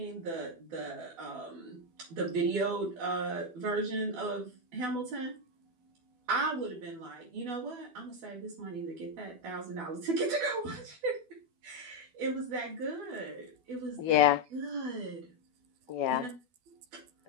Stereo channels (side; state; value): left; late; 12 ms